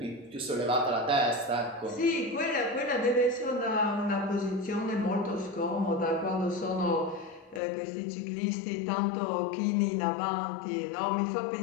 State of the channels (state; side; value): drops out; right; at 7.6 s